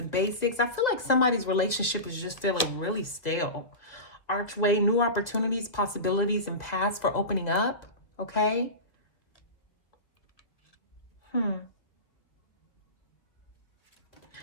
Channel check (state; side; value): late; right; 1.9 ms